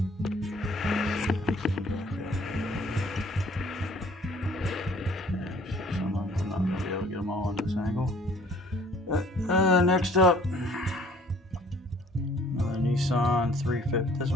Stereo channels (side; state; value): both; normal; correlation 0.56